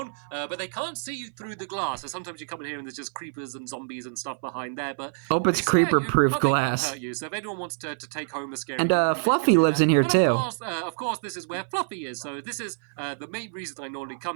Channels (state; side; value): silent; left; 57 dB below the other